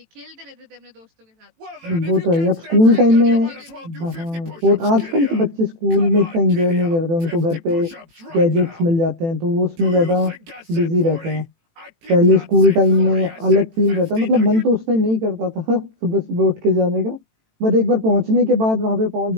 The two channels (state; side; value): late; left; 18 ms